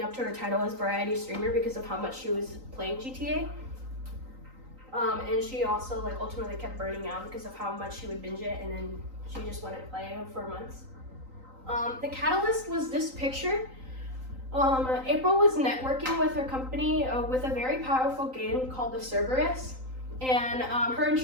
up to her title as variety streamer because of how much she was playing GTA. And she also like ultimately kept burning out because of how much she would binge it, and then she just wouldn't play for months. The catalyst was this picture. April was networking with her company with a very powerful game called the Cerberus, and her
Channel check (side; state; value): left; late; 3.9 ms